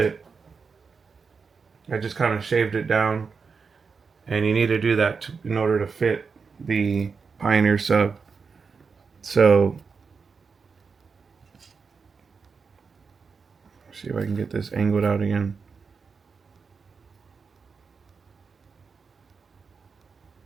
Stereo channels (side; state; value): left; quieter; 5.3 dB